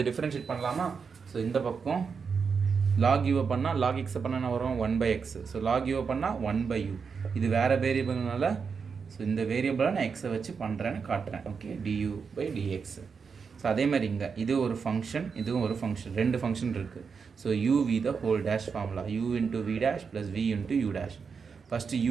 டிஃப்ரென்ஷியேட் பண்ணலாமா? ஸோ இந்த பக்கம் லாக் யூவை பண்ணால் லாக் எக்ஸை பண்ணால் என்ன வரும்? 1/x. ஸோ லாக் யூவை பண்ணால் 1/u. இது வேறு வேரியபிள்னால ஸோ இந்த வேரியபிளாக நான் எக்ஸை வச்சு பண்ணுறேன்னு காட்டுறேன். Okay, du by dx. So அதே மாதிரி இங்கே இது ஒரு ஃபங்க்ஷன், இதுவும் ஒரு ஃபங்க்ஷன், 2 ஃபங்க்ஷன் இருக்குது. So u v the whole dash formula, u into we dash plus v into u dash. First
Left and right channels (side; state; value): left; quieter; 5.7 dB